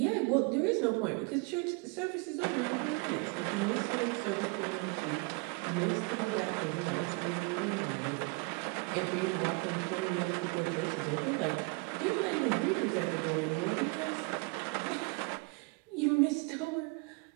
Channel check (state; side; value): quieter; left; 30.9 dB